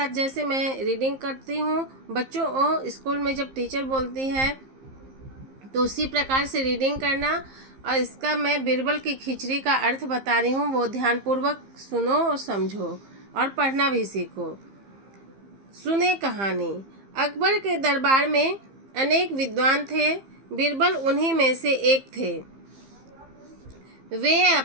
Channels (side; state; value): left; late; 15 ms